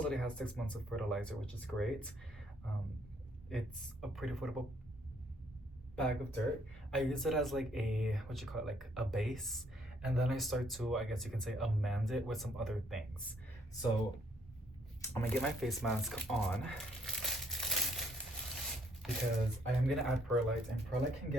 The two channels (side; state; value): both; normal; correlation 0.68